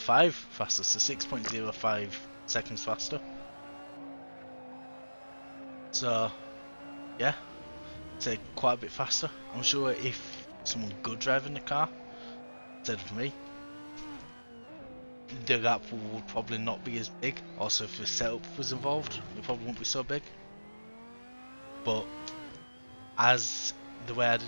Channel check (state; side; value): inverted; both; correlation -1.00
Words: faster, so 6.05 seconds faster. So yeah, it's quite a bit faster. I'm sure if someone good driving the car instead of me, the gap would probably not be as big. Also, if the setup was involved, it probably won't be so big. But as the way I